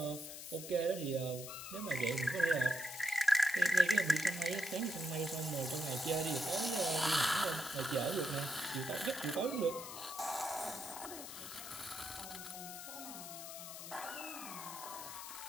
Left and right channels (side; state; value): left; noise; hiss, 10 dB below the sound